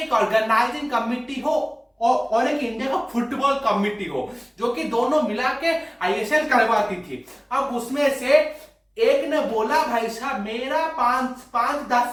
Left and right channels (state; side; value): identical; both; correlation 1.00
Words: ऑर्गेनाइजिंग कमिटी हो और एक इंडिया का फुटबॉल कमिटी हो, जो कि दोनों मिला के आईएसएल करवाती थी। अब उसमें से एक ने बोला, भाई साहब मेरा